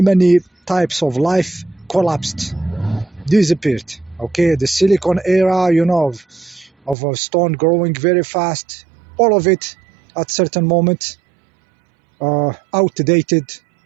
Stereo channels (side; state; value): left; drops out; at 7.0 s